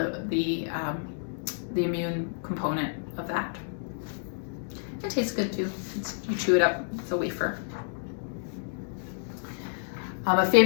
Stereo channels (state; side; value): silent; right; digital silence